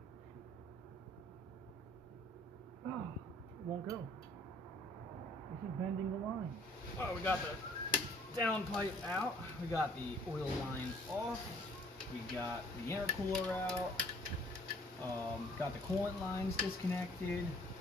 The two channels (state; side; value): normal; both; correlation 0.58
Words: Oh, it won't go. This is bending the line. Oh, we got the downpipe out. We got the oil line off. We got the intercooler out. Got the coolant lines disconnected.